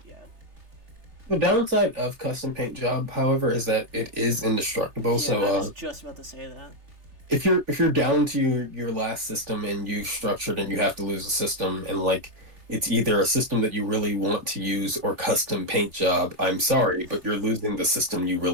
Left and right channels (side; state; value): left; late; 3.3 ms